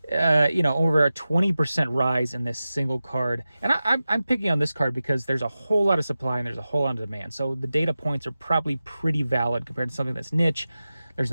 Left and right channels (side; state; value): both; inverted; correlation -0.94